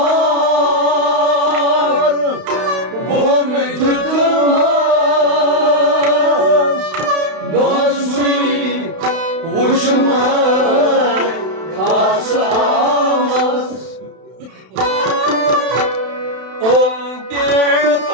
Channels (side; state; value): left; late; 31 ms